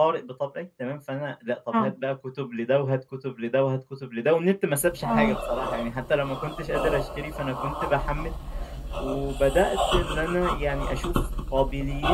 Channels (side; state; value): both; identical; correlation 1.00